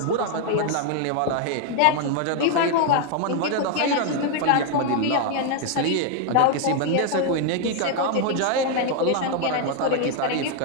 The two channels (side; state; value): both; different; correlation 0.00